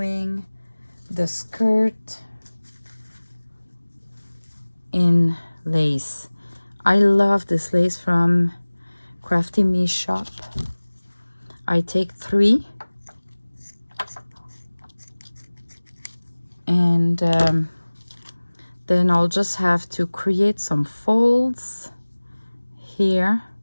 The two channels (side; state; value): both; inverted; correlation -1.00